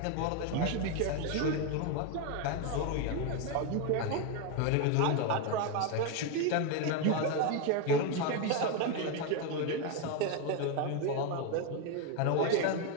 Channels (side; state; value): both; different; correlation 0.01